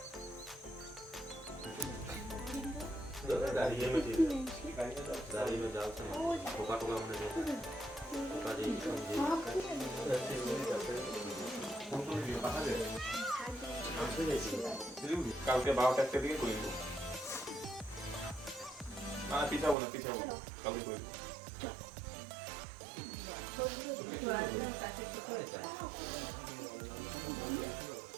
दाढ़ी में ठीक दाढ़ी में डालते हैं टोका टोका हमने टोका जी কালকে 12টা একটা দিকে করে দেব না পিঠাবো না কালকে করে দেব।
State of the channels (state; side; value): drops out; left; at 19.8 s